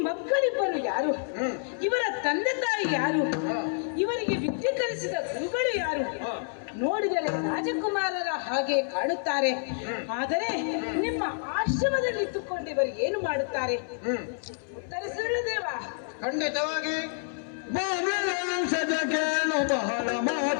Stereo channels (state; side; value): silent; right; 59 dB below the other